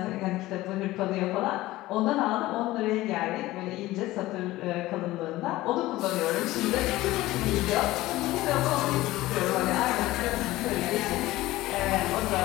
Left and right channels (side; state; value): right; quieter; 17.4 dB